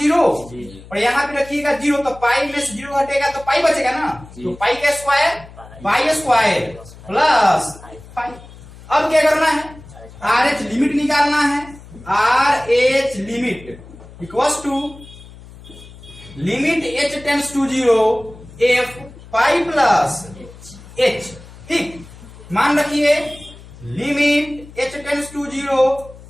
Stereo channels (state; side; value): noise; left; hum, 19 dB below the sound